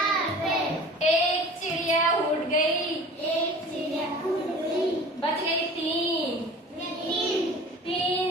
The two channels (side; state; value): both; normal; correlation 0.42